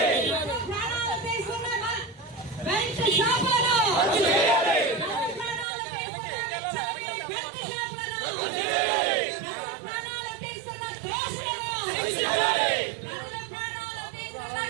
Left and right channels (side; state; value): left; drops out; at 5.7 s